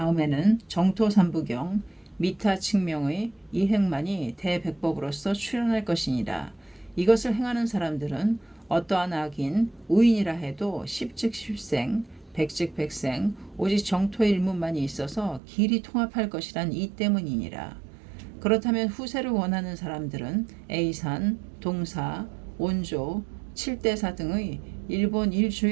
정토삼부경 미타 측명의 이행만이 대백법으로서 출현할 것이니라. 이것을 행하는 사람들은 어떠한 악인 우인이라 해도 십즉 십생 백즉 백생 오직 정토 일문만이 있어서 길이 통합할 것이란 이 때문이니라. 그렇다면 후세를 원하는 사람들은 A산, 동사, 온조, 칠대사 등의 일본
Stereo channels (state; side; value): drops out; left; at 15.4 s